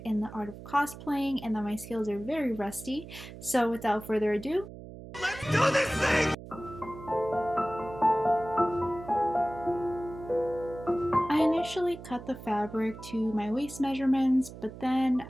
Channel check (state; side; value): noise; right; hum, 14 dB below the sound